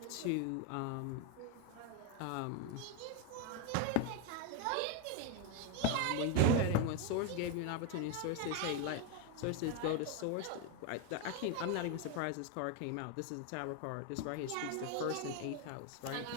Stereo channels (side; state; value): both; different; correlation 0.02